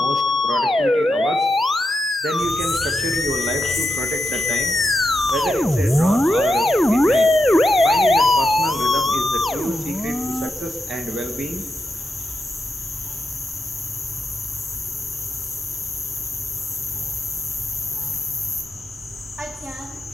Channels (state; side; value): normal; both; correlation 0.85